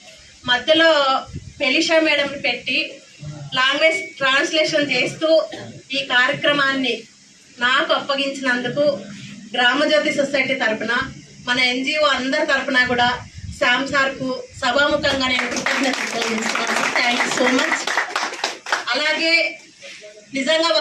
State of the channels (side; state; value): both; identical; correlation 1.00